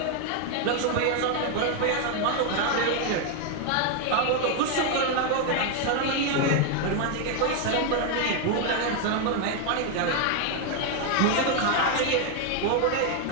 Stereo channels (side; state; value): both; different; correlation 0.01